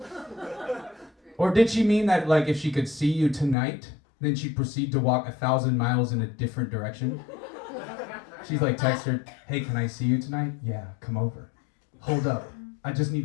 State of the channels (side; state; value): right; drops out; at 3.6 s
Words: Or did she mean that, like, if she could see you tonight, then she'd proceed to walk 1,000 miles in a different direction? She's like, text her, hey, can I see you tonight? Yeah, come over. Hold up. I just